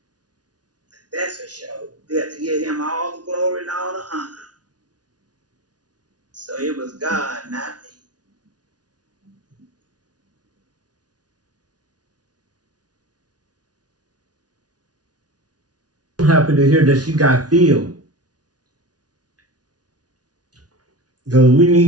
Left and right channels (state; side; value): late; left; 0.69 ms